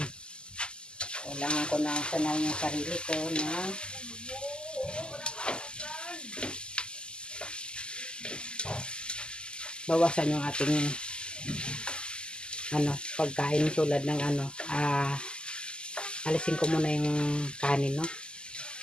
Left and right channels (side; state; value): right; late; 0.048 ms